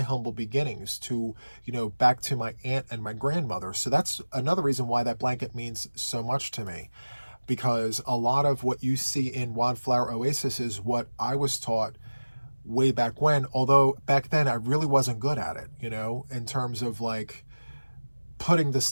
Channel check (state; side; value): inverted; both; correlation -1.00